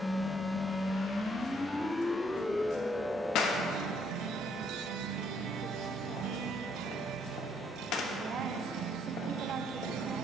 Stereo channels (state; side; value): normal; both; correlation 0.69